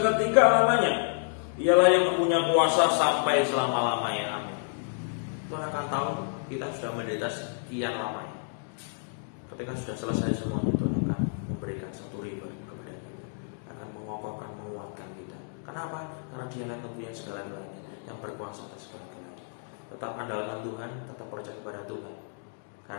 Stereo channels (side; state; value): right; silent; digital silence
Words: lamanya. Ialah yang mempunyai kuasa sampai selama-lamanya. Amin. Tuhan akan tahu kita sudah menderita sekian lamanya. Ketika sudah selesai semuanya, Tuhan akan memberikan satu riba kepada kita, akan mengokohkan, menguatkan kita. Kenapa? Karena Dia akan mempunyai segala-galanya, yang berkuasa atas segala-galanya. Tetap andalkan Tuhan, tetap percaya kepada Tuhan,